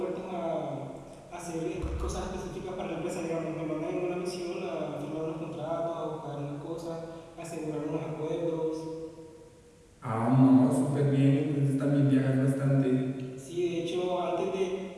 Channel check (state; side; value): identical; both; correlation 1.00